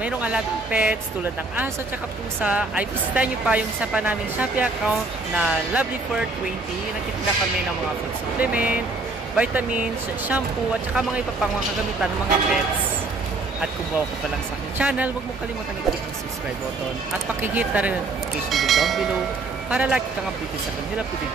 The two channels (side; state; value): left; quieter; 3.4 dB